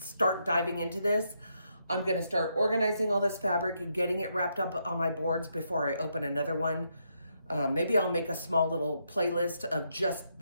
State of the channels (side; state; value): both; inverted; correlation -0.79